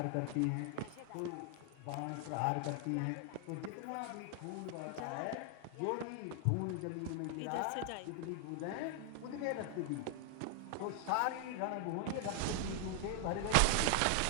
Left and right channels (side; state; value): both; different; correlation 0.00